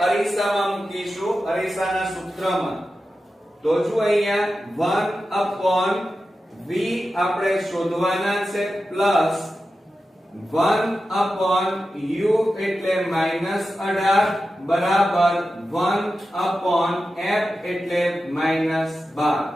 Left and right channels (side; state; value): both; normal; correlation 0.92